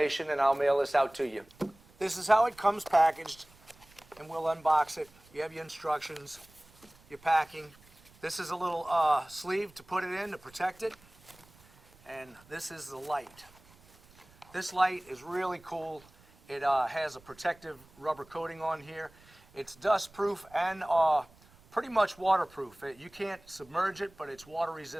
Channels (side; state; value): right; noise; rumble, 27 dB below the sound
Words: and I'll mail this out to you. This is how it comes packaged, and we'll unbox it. You have your instructions, your packing. This is a little sleeve to put it in to protect it, and this is the light. This light is really cool. It has a protective rubber coating on here. It's dust proof and pretty much waterproof. You can't submerge it, but it's water